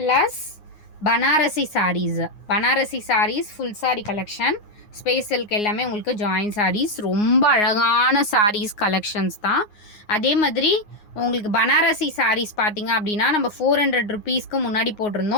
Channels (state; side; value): late; right; 9.6 ms